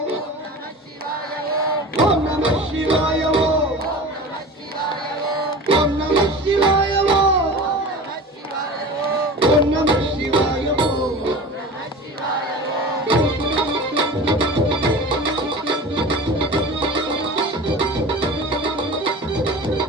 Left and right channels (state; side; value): normal; both; correlation 0.35